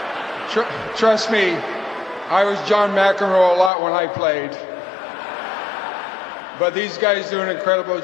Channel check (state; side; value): drops out; right; at 3.7 s